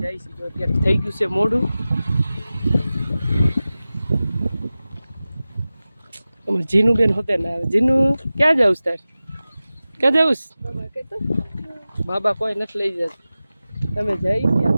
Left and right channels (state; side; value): inverted; both; correlation -0.96